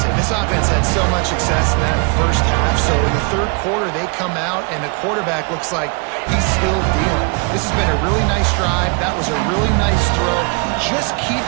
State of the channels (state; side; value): quieter; left; 33.3 dB